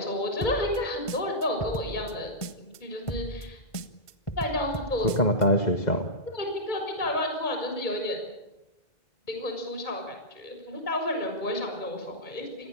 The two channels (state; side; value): late; right; 1.5 ms